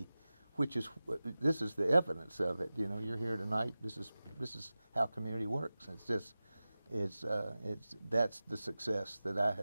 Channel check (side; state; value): both; inverted; correlation -0.96